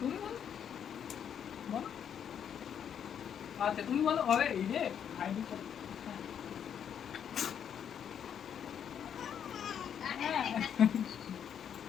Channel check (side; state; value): right; quieter; 8.5 dB